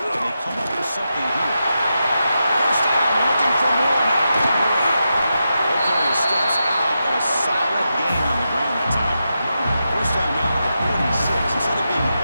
they come up with something here. First down, looking for more now. Okay, he steps out, but a solid gain on the ground that time. First down now at the 46. Instead of being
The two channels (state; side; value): inverted; both; correlation -0.88